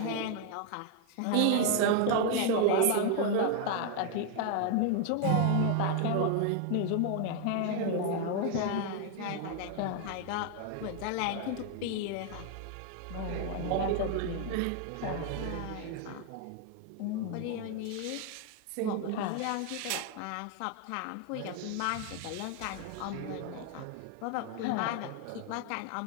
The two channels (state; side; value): different; both; correlation 0.01